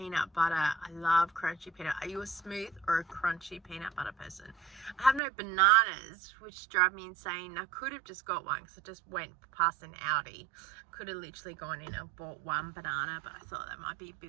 butter. I love crunchy peanut. Are you a smooth or a crunchy peanut butter person? I have no bananas, which drive me insane. I could have just got one because I just went past an Aldi. Could have literally gone in and bought one banana, but I thought that might be a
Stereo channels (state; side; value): drops out; left; at 5.2 s